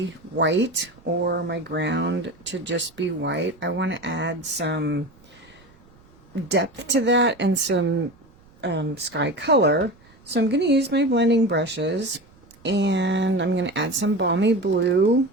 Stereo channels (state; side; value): noise; right; rumble, 28 dB below the sound